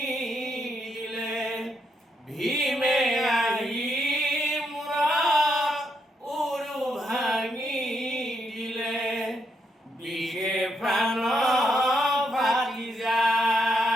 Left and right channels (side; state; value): both; normal; correlation 0.78